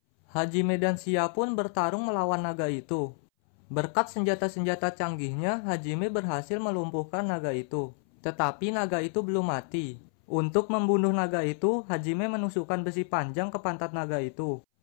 Hajime dan Sia pun bertarung melawan naga itu. Berkat senjata-senjata canggihnya, Hajime berhasil melumpuhkan naga itu. Tetapi naga itu belum mati. Untuk membunuh naga itu, Hajime menusukkan besi panjang ke pantat naga itu.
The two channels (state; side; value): silent; right; 58 dB below the other